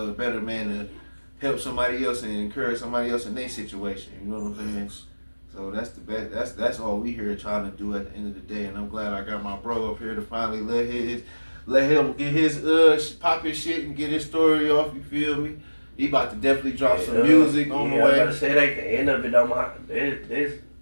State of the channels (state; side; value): inverted; both; correlation -1.00